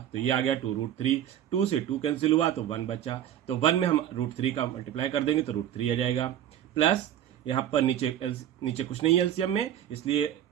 तो ये आ गया 2√3। 2 से 2 कैंसिल हुआ तो 1 बचा, तो 1 में हम √3 का मल्टीप्लाई कर देंगे तो √3 आ जाएगा। प्लस यहाँ पर नीचे कुछ नहीं है एलसीएम में, इसलिए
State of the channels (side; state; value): left; quieter; 10.9 dB